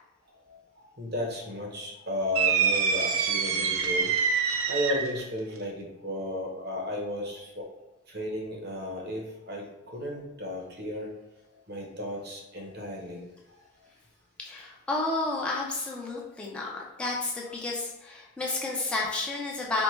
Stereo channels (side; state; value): both; normal; correlation 0.02